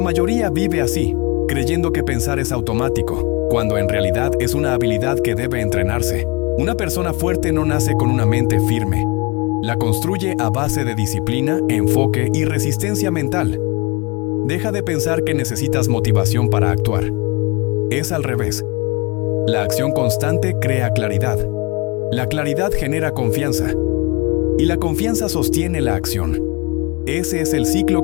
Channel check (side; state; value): right; quieter; 26.1 dB